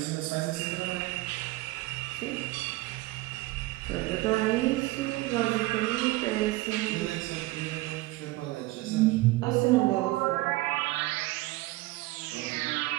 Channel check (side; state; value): left; quieter; 19.7 dB